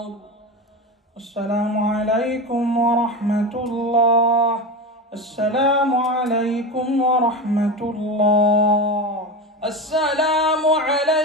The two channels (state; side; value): normal; both; correlation 0.22